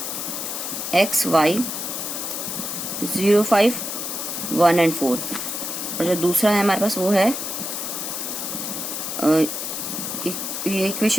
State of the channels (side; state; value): left; noise; hiss, 4 dB below the sound